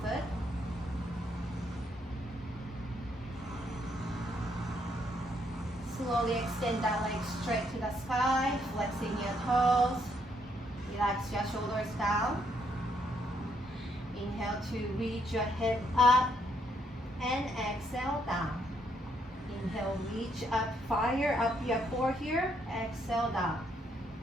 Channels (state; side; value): normal; both; correlation 0.73